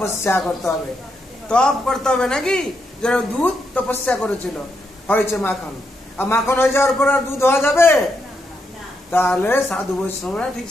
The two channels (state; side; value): normal; both; correlation 0.81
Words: করতে হবে, তপ করতে হবে, নাকি? যারা দুধ তপস্যা করেছিল, হয়েছে মাখন। আর মাখন হয়ে যাওয়ার পর আর দুধ হওয়া যাবে? তাহলে সাধু বৈষ্ণবরা ঠিক